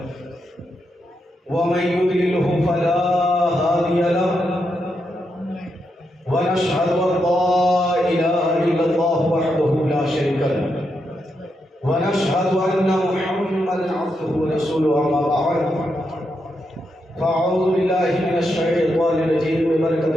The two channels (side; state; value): both; normal; correlation 0.83